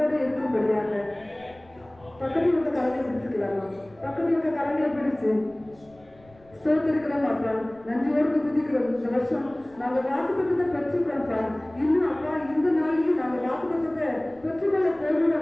பக்கத்தில் இருக்க கரங்களை பிடிச்சுக்கலாமா? பக்கத்தில் இருக்க கரங்களை பிடிச்சு ஸ்தோத்திரிக்கிறோம் அப்பா, நன்றியோடு துதிக்கிறோம். இந்த வருஷம் நாங்க வாக்குத்தத்தத்தை பெற்றுக்கிறோம்ப்பா. இன்னும் அப்பா இந்த நாளைக்கு நாங்க வாக்குத்தத்தத்தை பெற்றுக்கொள்ள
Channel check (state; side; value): noise; left; rumble, 28 dB below the sound